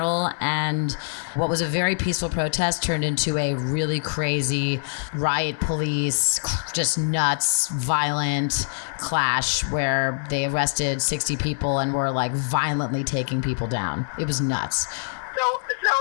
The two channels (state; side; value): silent; right; 59 dB below the other